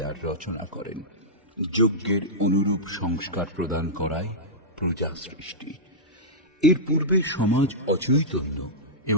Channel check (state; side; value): normal; both; correlation -0.12